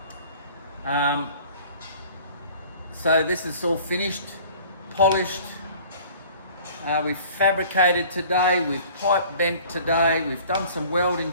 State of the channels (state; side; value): inverted; both; correlation -0.49